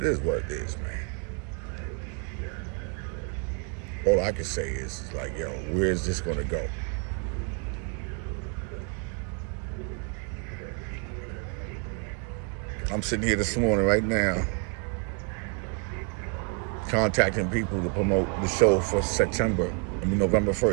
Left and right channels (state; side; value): quieter; left; 36.9 dB